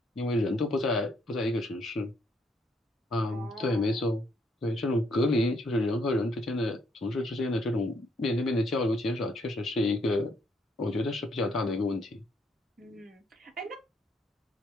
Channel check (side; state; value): both; normal; correlation 0.72